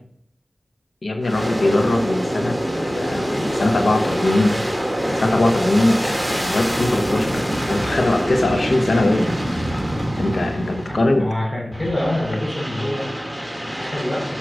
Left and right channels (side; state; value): both; normal; correlation 0.97